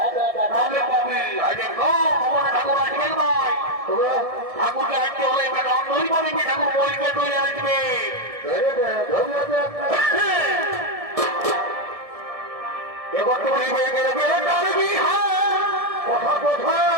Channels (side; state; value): left; late; 1.7 ms